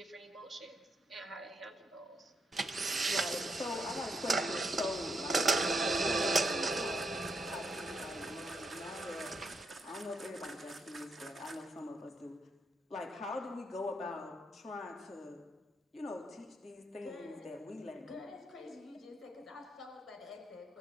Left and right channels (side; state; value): both; normal; correlation 0.79